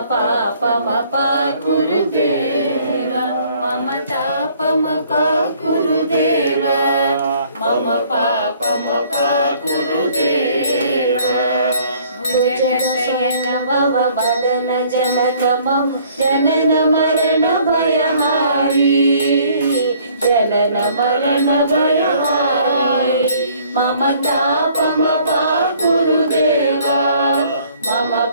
पापमपा गुरुदेव मम तापमपा गुरुदेव मम पापमपा गुरुदेव भुजगशयन भव मदन जनकमं जनन मरण भयहारी जनन मरण भयहारी मम तापमपा गुरुदेव मम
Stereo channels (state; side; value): inverted; both; correlation -0.59